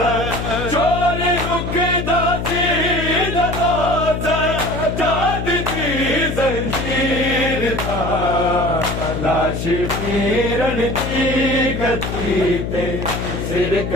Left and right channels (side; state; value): left; noise; hum, 4 dB below the sound